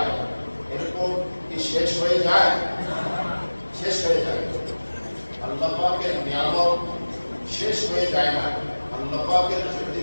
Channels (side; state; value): both; inverted; correlation -1.00